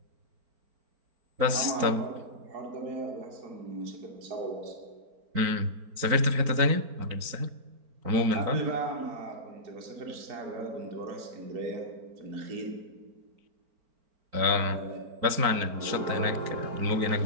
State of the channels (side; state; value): left; late; 4.4 ms